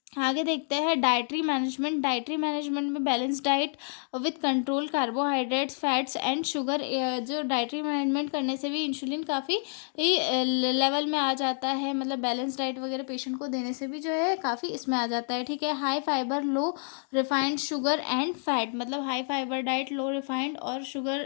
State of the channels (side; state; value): right; silent; 59 dB below the other